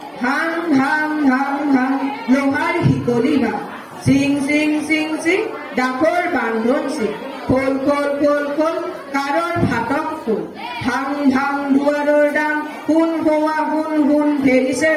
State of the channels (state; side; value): identical; both; correlation 1.00